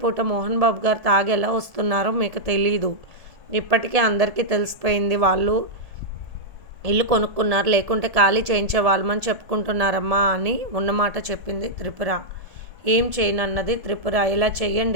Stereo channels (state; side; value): late; left; 1.7 ms